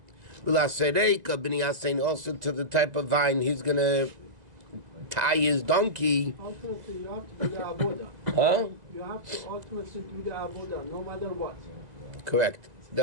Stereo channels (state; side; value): late; left; 1.9 ms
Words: V'lasereika b'ni yasein, also to the type of vine he's going to tie his donkey. Ultimately, you have to do the avoda. Huh? You have to ultimately do the avoda, no matter what. Correct.